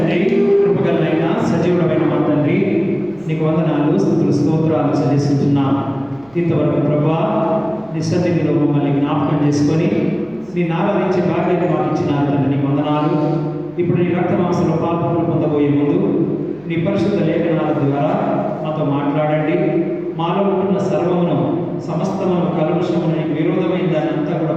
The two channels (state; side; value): noise; right; hum, 30 dB below the sound